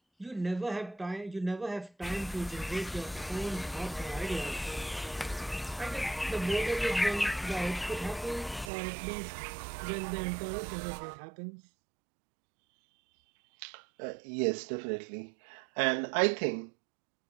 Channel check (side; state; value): left; drops out; at 8.7 s